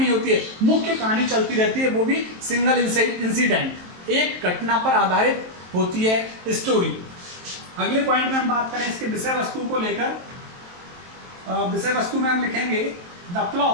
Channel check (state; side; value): late; left; 23 ms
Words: होती है, मुख्य कहानी चलती रहती है, वो भी सिंगल इंसिडेंट, एक घटना पर आधारित होती है स्टोरी। अगले पॉइंट में हम बात करें इसके विषय वस्तु को लेकर। विषय वस्तु में हम लिखेंगे the